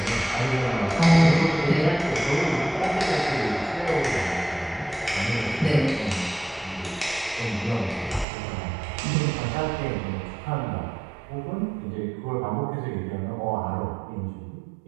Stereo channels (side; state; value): left; drops out; at 8.2 s